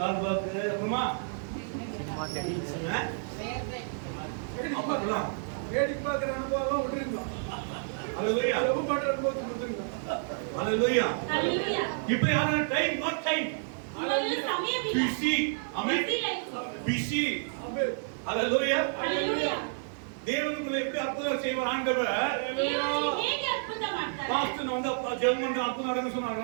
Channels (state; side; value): silent; left; digital silence